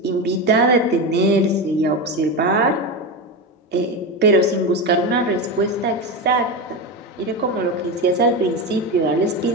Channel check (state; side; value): normal; both; correlation 0.17